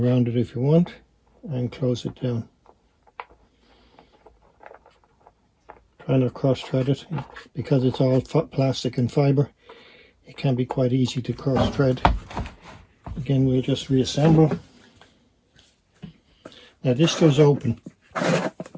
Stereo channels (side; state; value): both; identical; correlation 1.00